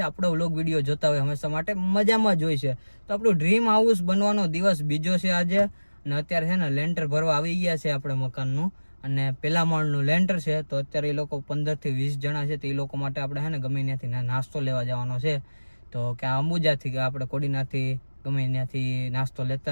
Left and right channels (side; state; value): both; inverted; correlation -1.00